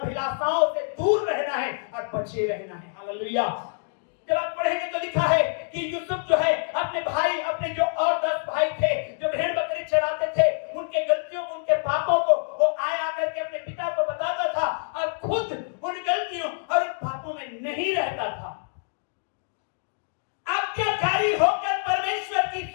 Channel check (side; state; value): right; silent; digital silence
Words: से दूर रहना है और बचे रहना है। हालेलुया। जब आप पढ़ेंगे तो लिखा है कि यूसुफ जो है अपने भाई, अपने जो और 10 भाई थे जो भेड़ बकरी चराते थे, उनके गलतियों को, उनके पापों को वो आया करके अपने पिता को बताता था और खुद उन गलतियों और उन पापों में नहीं रहता था। आज्ञाकारी होकर परमेश्वर की